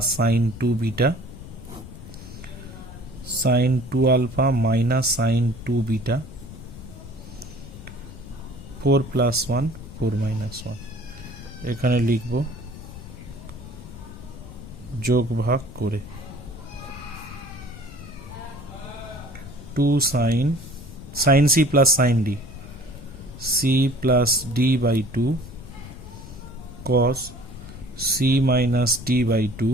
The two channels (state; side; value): noise; left; rumble, 14 dB below the sound